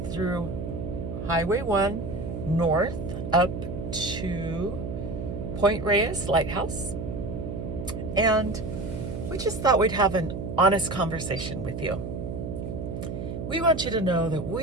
through Highway 1 north up to Point Reyes Lighthouse. And we just thought we'd have an honest conversation with you. We want you to know that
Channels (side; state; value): right; noise; hum, 6 dB below the sound